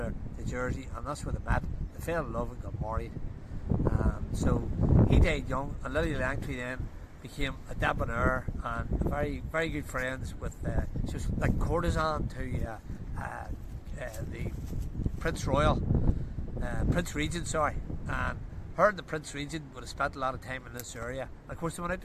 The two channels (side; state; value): both; identical; correlation 1.00